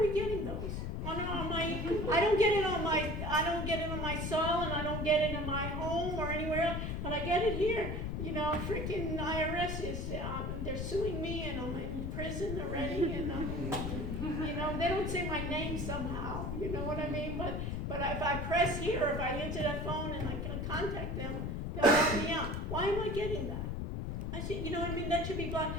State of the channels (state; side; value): noise; left; rumble, 2 dB below the sound